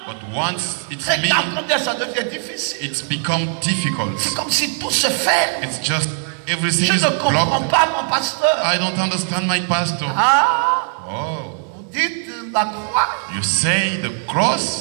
but once it's c'est me, qu'après ça devient difficile. it's become difficult. C'est comme si tout se fait. It's just everything Je is ne comprends broken. pas, mon pasteur. I don't understand my pastor. Ah, Oh, vous dites la croix, you say the cross,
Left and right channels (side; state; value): left; silent; 59 dB below the other